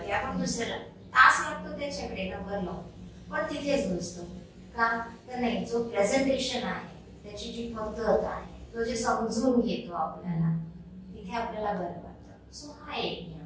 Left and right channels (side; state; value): both; identical; correlation 1.00